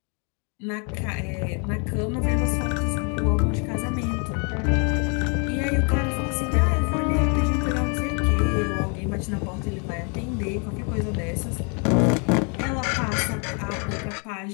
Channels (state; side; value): quieter; right; 36.8 dB